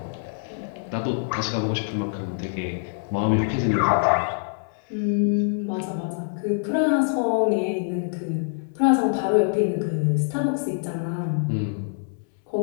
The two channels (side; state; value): right; silent; 62 dB below the other